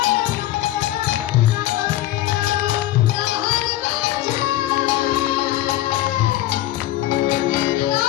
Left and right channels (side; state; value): right; quieter; 14.4 dB